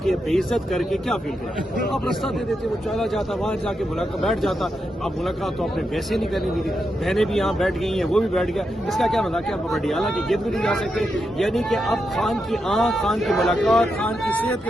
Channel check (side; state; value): both; normal; correlation 0.85